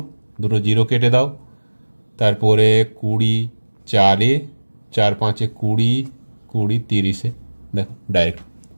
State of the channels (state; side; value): inverted; both; correlation -1.00